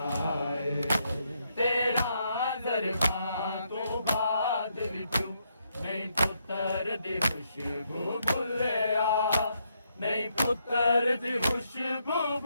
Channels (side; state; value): both; inverted; correlation -0.77